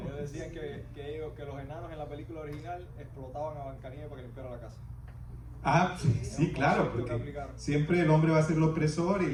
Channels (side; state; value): both; identical; correlation 1.00